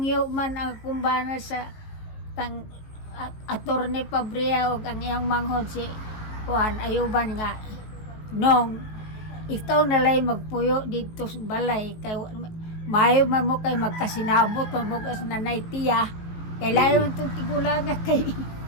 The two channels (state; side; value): late; right; 18 ms